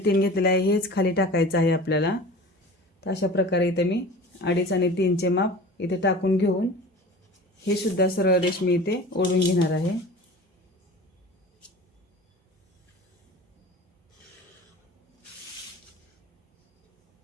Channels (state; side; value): normal; both; correlation 0.38